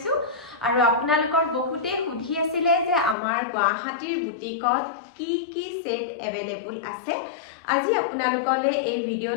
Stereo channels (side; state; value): right; drops out; at 3.2 s